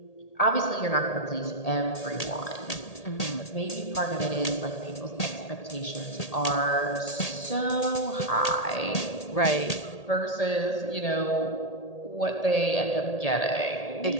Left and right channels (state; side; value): late; right; 1.8 ms